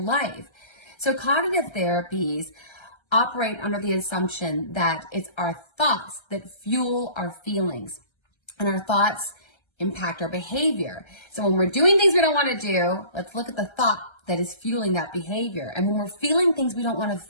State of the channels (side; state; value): right; late; 1.3 ms